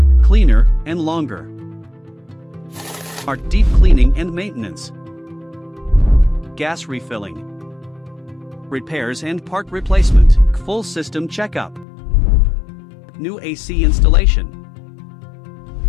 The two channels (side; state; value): right; drops out; at 11.9 s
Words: cleaner, and longer. Our deep cleaning and maintenance. Gas refilling. Repairs and part replacement. Full system checkup. New AC installation.